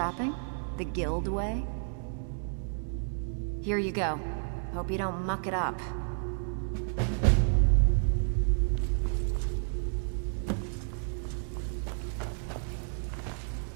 The guild way? Here you go. Hope you don't muck it up.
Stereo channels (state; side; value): silent; left; 57 dB below the other